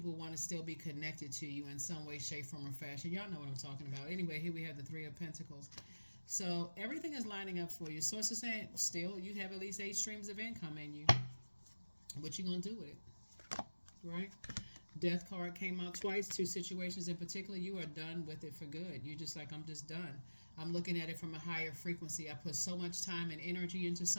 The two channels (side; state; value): both; inverted; correlation -1.00